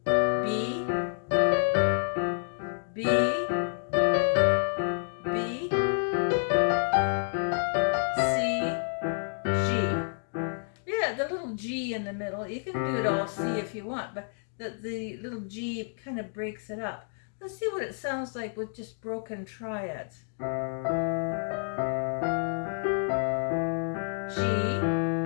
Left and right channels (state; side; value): silent; right; 58 dB below the other